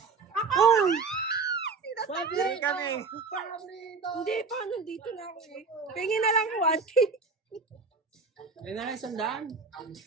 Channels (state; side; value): quieter; left; 4.6 dB